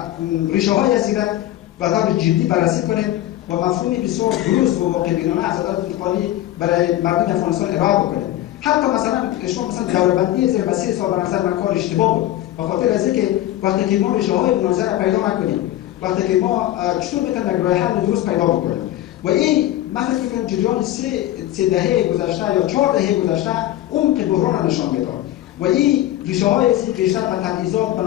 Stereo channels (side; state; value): right; quieter; 14.0 dB